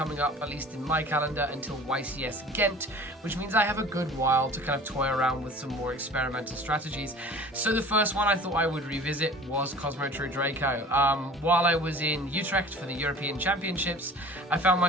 up, at least in my calendar, until YCS Ghent, which means I have a good while to kind of toy around with some more experimental strategies. So the first one I thought I would revisit was Kozmo True Draco. While I was in Utrecht for the European Championships, I found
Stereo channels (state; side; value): normal; both; correlation 0.43